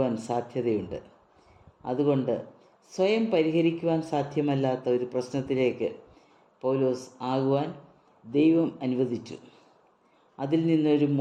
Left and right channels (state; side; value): identical; both; correlation 1.00